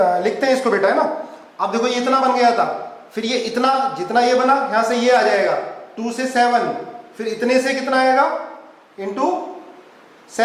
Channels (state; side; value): identical; both; correlation 1.00